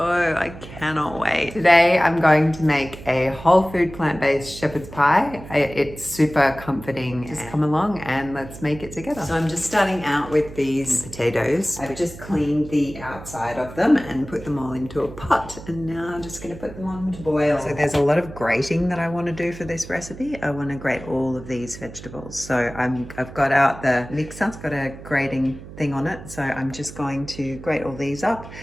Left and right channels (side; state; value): right; noise; hum, 15 dB below the sound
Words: I cannot wait. Today I'm going to make a whole food plant-based shepherd's pie. It's super comforting. Just come along and let's make it together. So I'm just starting out with these potatoes. I've just cleaned the outside of them and put them all into a pot, and now I'm just going to put them on to boil. So there's a lot of grating that I want to do for this recipe. I want to grate all of these vegetables. So I've got out the mixer. It's got a grating thing on it, so I'm just going to grate all these up